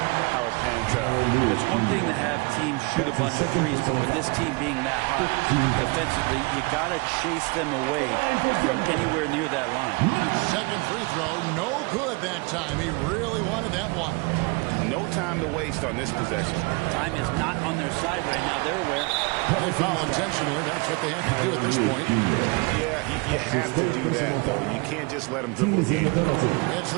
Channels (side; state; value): left; quieter; 28.6 dB